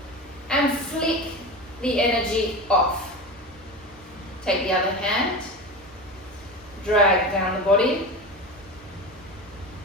And flick the energy off. Take the other hand. Drag down the body.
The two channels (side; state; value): both; normal; correlation 0.26